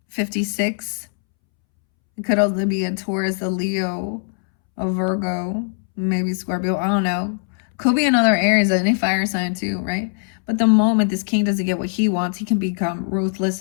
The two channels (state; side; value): silent; right; 65 dB below the other